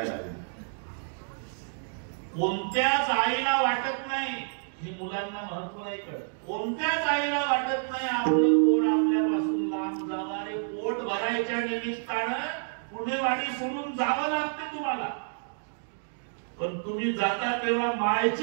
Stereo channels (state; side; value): silent; left; digital silence